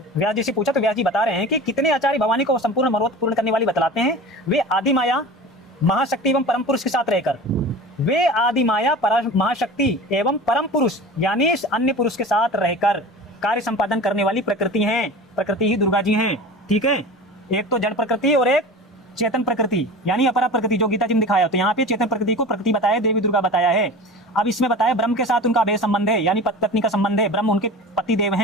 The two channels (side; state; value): both; normal; correlation 0.35